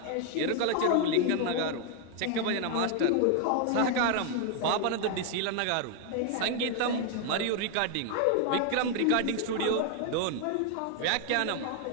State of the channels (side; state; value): both; different; correlation 0.00